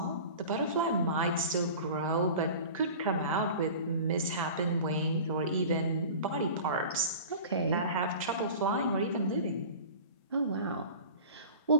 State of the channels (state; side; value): inverted; both; correlation -0.38